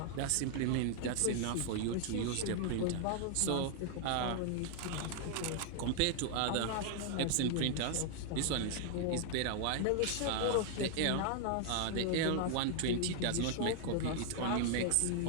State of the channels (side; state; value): both; different; correlation 0.00